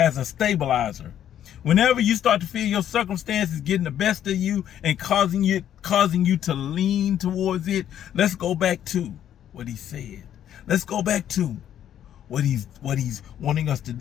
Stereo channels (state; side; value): quieter; right; 10.5 dB